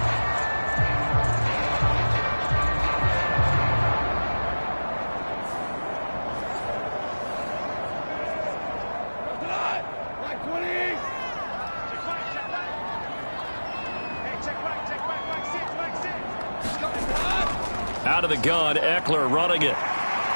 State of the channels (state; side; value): inverted; both; correlation -1.00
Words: Out of the gun, Eckler running it.